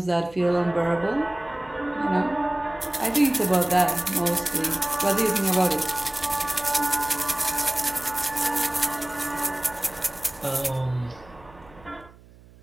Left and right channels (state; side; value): noise; right; hum, 24 dB below the sound